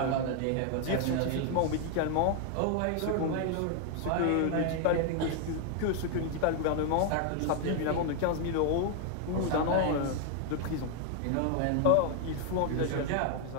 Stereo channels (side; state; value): both; different; correlation 0.00